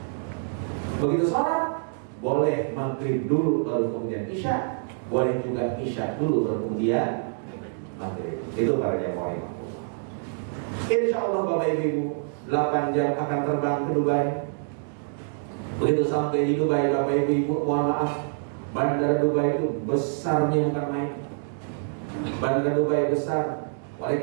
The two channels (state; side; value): silent; left; digital silence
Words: Begitu sholat, boleh maghrib dulu baru kemudian Isya, boleh juga Isya dulu baru kemudian maghrib. Itu para jamaah. Insya Allah Bapak Ibu 8 jam akan terbang ke Dubai. Begitu sampai di Dubai, Bapak Ibu, mohon maaf, Bandara Dubai itu besarnya bukan main. Bandara Dubai besar. Oleh